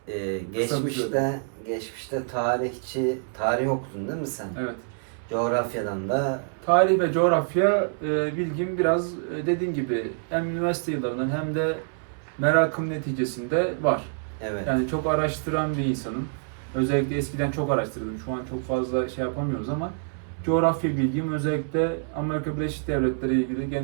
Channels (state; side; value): silent; left; 61 dB below the other